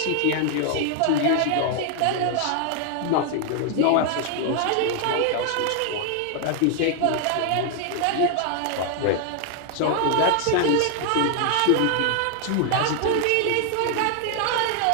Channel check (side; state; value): both; different; correlation 0.00